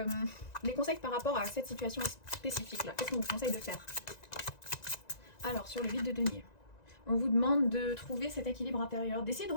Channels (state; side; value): late; right; 1.9 ms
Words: les conseils par rapport à cette situation spécifique là. Qu'est-ce qu'on vous conseille de faire? Alors, sur le 8 de denier, on vous demande de trouver cet équilibre intérieur, d'essayer de